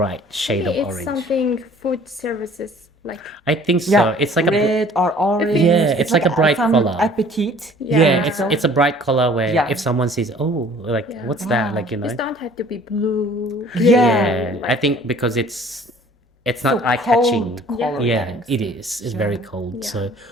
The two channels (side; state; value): both; normal; correlation 0.52